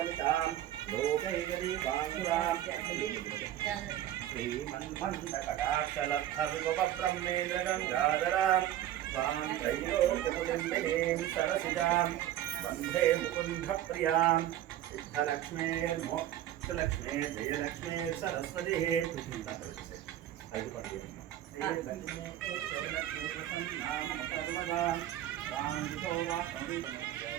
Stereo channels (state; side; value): quieter; left; 12.5 dB